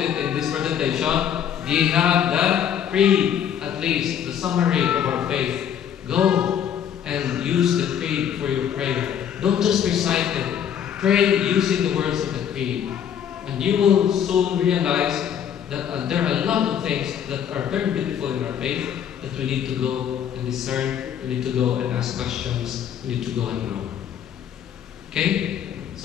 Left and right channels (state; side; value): quieter; right; 9.0 dB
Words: it in this presentation. We have the creed, at least, the summary of our faith. Go and use the creed for your prayer. Don't just recite it. Pray using the words of the creed. And you will soon realize that there are a lot of things that are very beautiful in our faith that we need to go and discern. We need to go and ask questions. We need to go and grow. Okay?